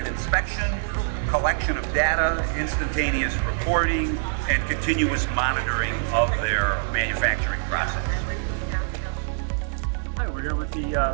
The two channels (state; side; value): silent; left; digital silence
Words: inspection, collection of data, instantaneous reporting, and continuous monitoring of their manufacturing process. Hi, we're here with the